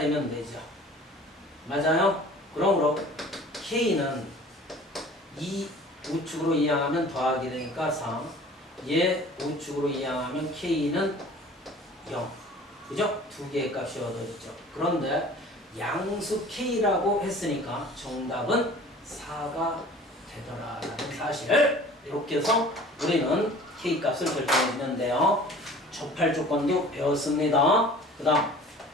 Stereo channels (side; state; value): both; normal; correlation 0.46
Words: 되죠. 맞아요? 그러므로 k는 2 우측으로 이항하면 더하기 되니까 3. 얘 우측으로 이항하면 k는 0. 그죠? 두 개의 값이 얻어졌죠. 그런데 양수 k라고 했으니까 정답은 4가 되더라라는 사실을 이렇게 해서 우리는 k 값을 결정해 주는데요. 접할 조건도 배웠습니다. 그 다음